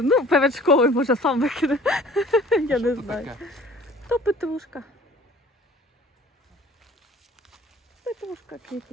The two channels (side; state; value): both; normal; correlation 0.50